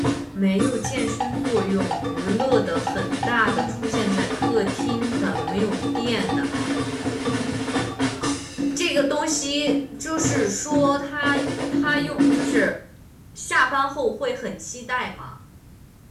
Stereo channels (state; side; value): identical; both; correlation 1.00